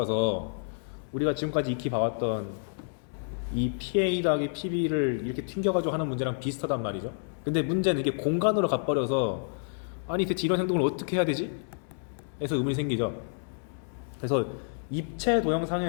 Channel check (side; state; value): right; silent; 58 dB below the other